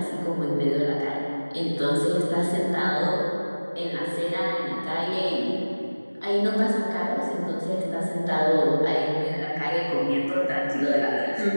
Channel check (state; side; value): inverted; both; correlation -1.00